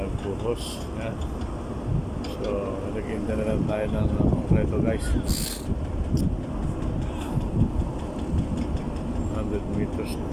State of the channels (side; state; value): both; identical; correlation 1.00